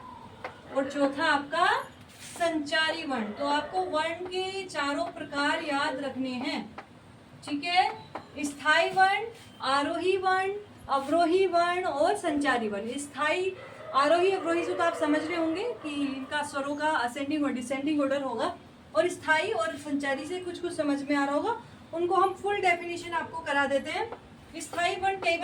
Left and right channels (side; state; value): both; identical; correlation 1.00